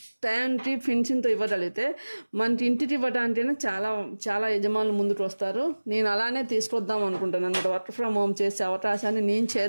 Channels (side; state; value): both; inverted; correlation -1.00